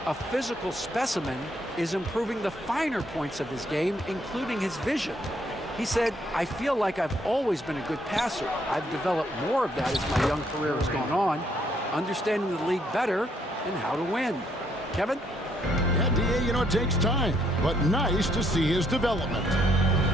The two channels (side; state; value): both; normal; correlation 0.70